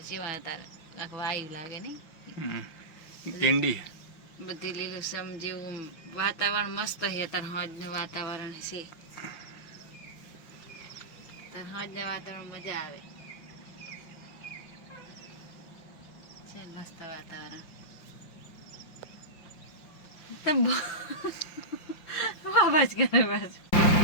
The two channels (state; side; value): late; right; 5.7 ms